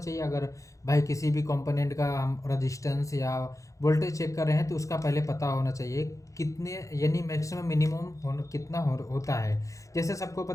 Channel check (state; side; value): late; right; 0.16 ms